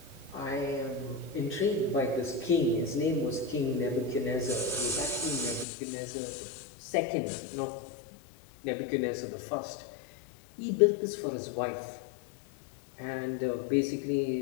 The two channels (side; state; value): right; drops out; at 5.7 s